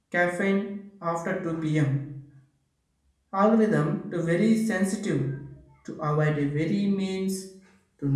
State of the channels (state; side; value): identical; both; correlation 1.00